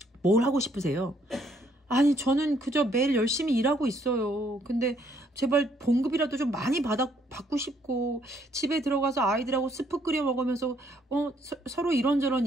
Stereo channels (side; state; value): both; normal; correlation 0.68